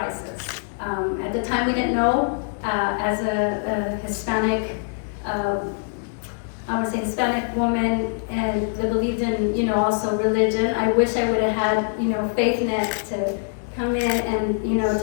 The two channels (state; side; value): silent; right; digital silence